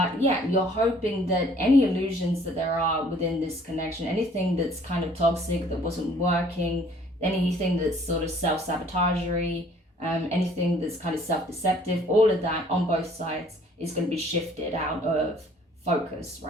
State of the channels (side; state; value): both; normal; correlation 0.57